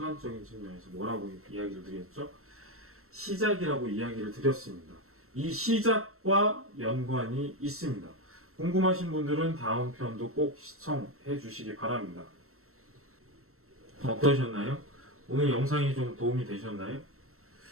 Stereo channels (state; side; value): late; left; 0.63 ms